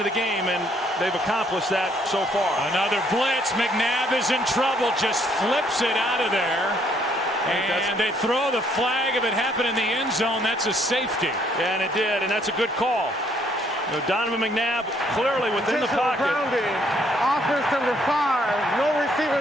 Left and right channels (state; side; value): normal; both; correlation 0.67